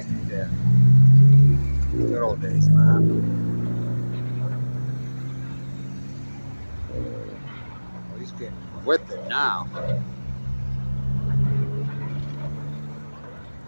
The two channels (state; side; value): inverted; both; correlation -1.00